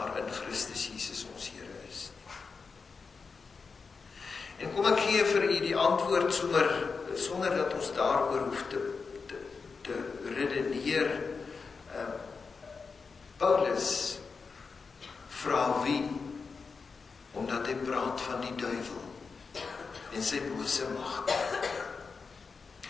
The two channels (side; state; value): right; quieter; 4.9 dB